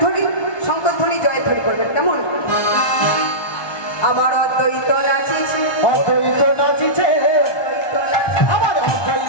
শঙ্করধ্বনি জয়ধ্বনি করবেন কেমন। আমার অদ্বৈত নাচিছে অদ্বৈত নাচিছে আমার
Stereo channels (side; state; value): right; late; 1.2 ms